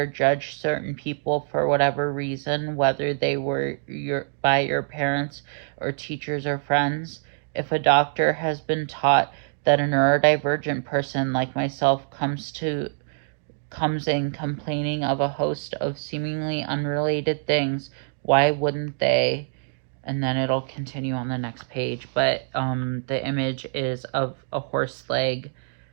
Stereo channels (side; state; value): left; silent; digital silence